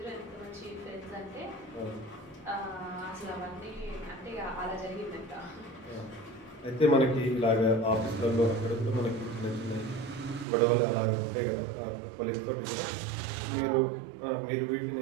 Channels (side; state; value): left; drops out; at 10.5 s